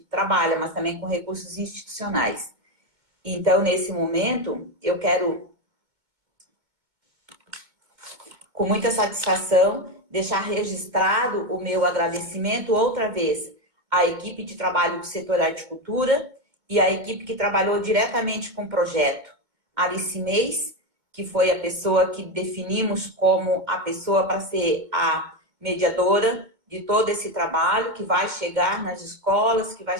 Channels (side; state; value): left; late; 2.2 ms